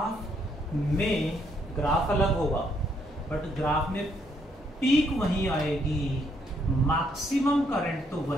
में, ग्राफ अलग होगा बट ग्राफ में पीक वहीं आएगी, मैक्सिमम करंट तो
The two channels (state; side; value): normal; both; correlation 0.72